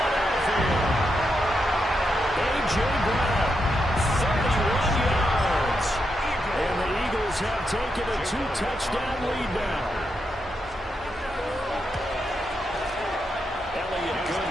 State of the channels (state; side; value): normal; both; correlation 0.83